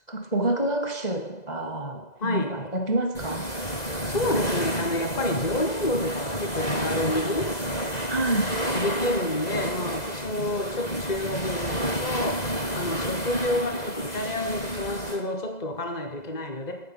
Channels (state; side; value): late; right; 2.0 ms